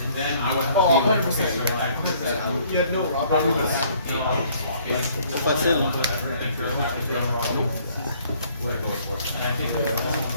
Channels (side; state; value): both; inverted; correlation -0.60